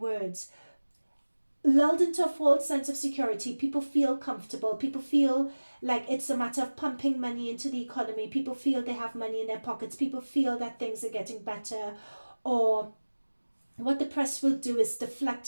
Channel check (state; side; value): inverted; both; correlation -1.00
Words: Lulled into a false sense of security, people feel comfortable, people feel like it's a matter of pumping money into the economy, people feel they have money in their pockets, people feel that things are getting better. Or what the press will do is